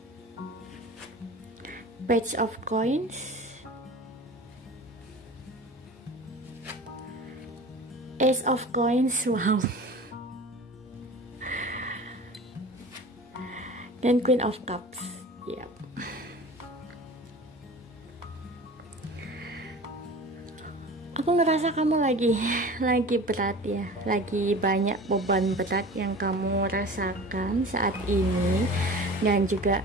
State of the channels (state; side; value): normal; both; correlation 0.38